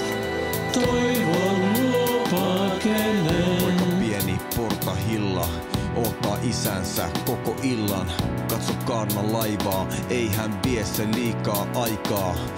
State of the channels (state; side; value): identical; both; correlation 1.00